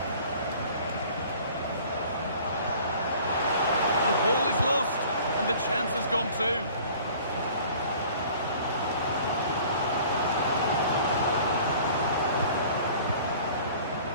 The ball is lost, and the chance has gone too.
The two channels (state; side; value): inverted; both; correlation -0.49